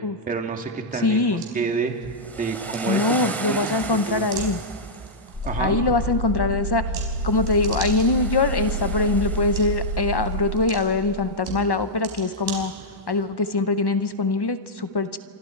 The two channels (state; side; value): normal; both; correlation -0.07